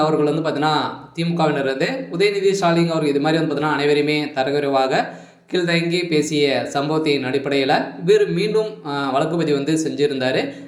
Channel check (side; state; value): both; identical; correlation 1.00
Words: அவர்கள் பார்த்தீங்கன்னா திமுகவினர் உதயநிதி ஸ்டாலின் அவர்கள் இது மாதிரி பார்த்தீங்கன்னா அனைவருமே தரக்குறைவாக கீழ்தங்கி பேசிய சம்பவத்தின் அடிப்படையில் இவர் மீண்டும் வழக்குப்பதிவு செஞ்சுருந்தார்.